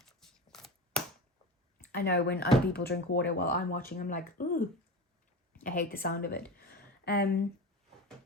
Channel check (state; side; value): normal; both; correlation 0.27